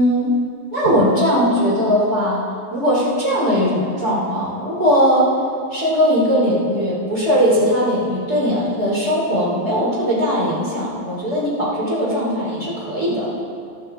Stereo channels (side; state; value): right; late; 11 ms